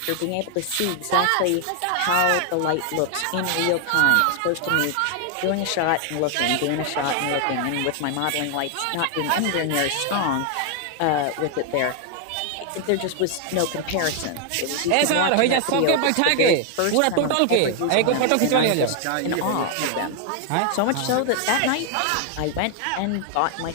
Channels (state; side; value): different; both; correlation 0.00